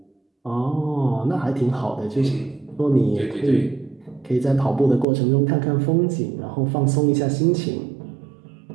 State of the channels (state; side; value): drops out; left; at 5.1 s